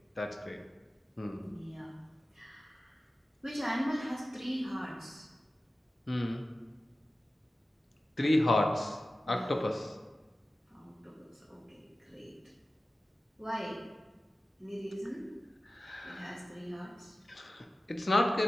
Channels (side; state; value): both; normal; correlation 0.95